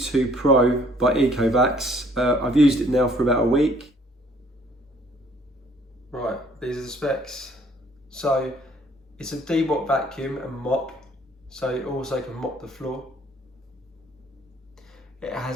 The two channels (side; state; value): both; normal; correlation 0.60